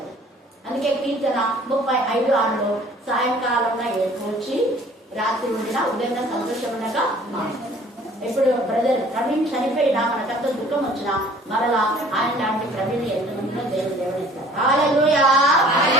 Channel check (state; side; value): normal; both; correlation 0.52